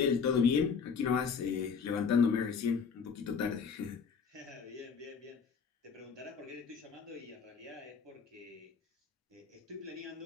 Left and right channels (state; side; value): quieter; right; 5.9 dB